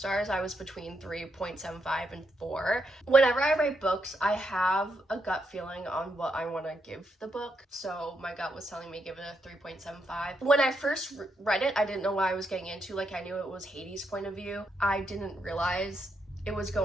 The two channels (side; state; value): both; normal; correlation 0.80